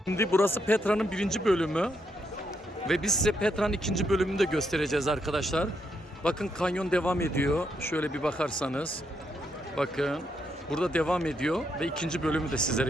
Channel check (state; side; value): normal; both; correlation 0.78